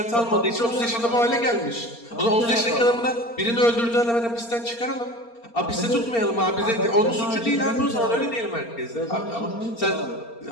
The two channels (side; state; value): right; late; 4.3 ms